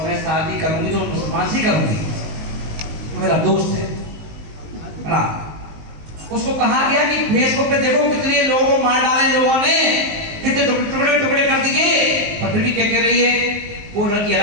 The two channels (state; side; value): late; left; 19 ms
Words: मैं शादी करूंगी तो मुसलमान से करूंगी, मेरा दोस्त है ना। उसको कहा गया कि फेसबुक पे देखो कितने लोगों को मार डाले लोगों ने, कितने टुकड़े टुकड़े कर दिए। पर फिर भी क्या कह रही है, वो लड़की